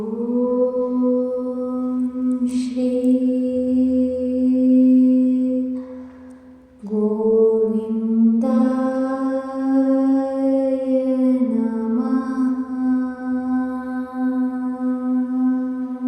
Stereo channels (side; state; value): both; identical; correlation 1.00